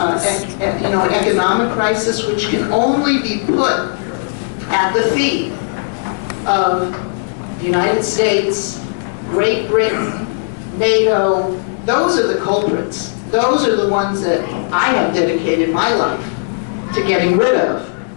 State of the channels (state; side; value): silent; right; 67 dB below the other